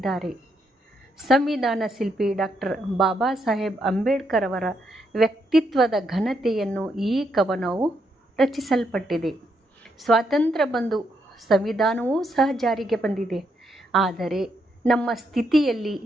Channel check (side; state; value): both; normal; correlation 0.78